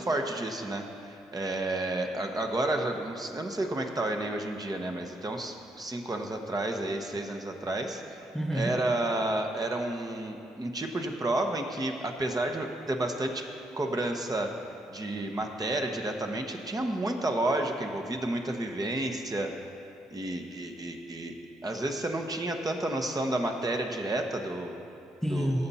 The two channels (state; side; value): normal; both; correlation 0.76